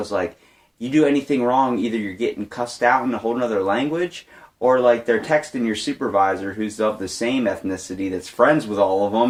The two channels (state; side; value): identical; both; correlation 1.00